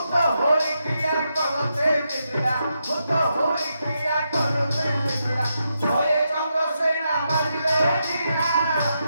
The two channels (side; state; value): both; inverted; correlation -0.83